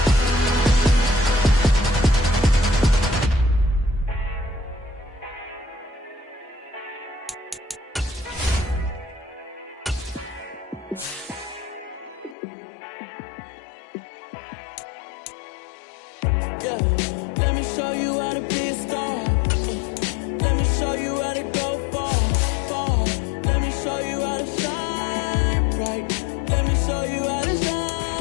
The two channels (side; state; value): right; drops out; at 12.4 s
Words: Yeah, let me show you how to be a star. Let me show you how to go far, far. Let me show you how to shine bright. Let me show you how to